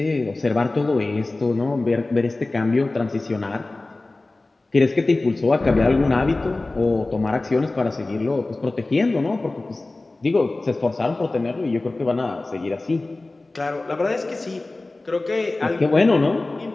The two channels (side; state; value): right; quieter; 3.1 dB